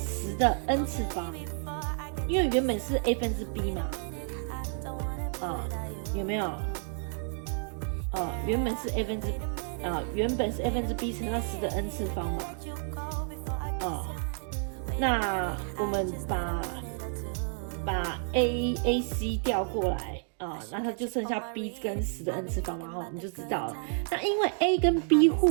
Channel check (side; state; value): left; silent; 57 dB below the other